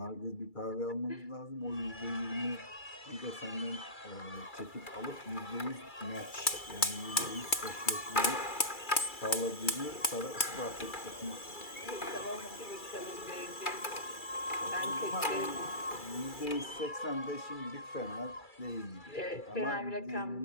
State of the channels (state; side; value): late; right; 2.3 ms